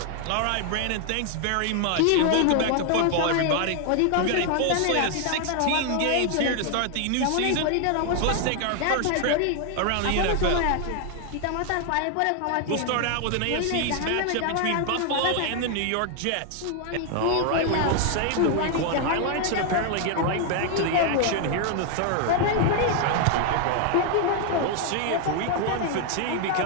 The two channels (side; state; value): both; different; correlation 0.00